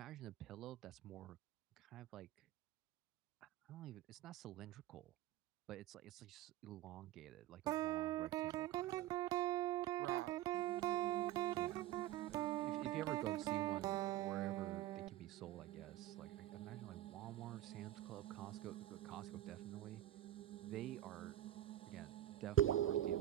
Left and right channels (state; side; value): quieter; left; 13.9 dB